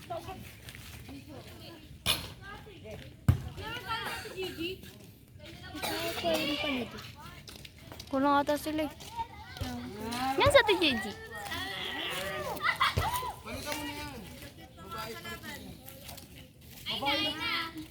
Kulang ata sila eh. Yan sa ito, Gigi.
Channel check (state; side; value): identical; both; correlation 1.00